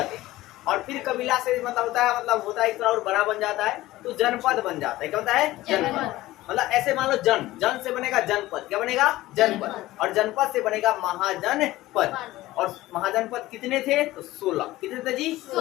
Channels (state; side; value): quieter; right; 17.0 dB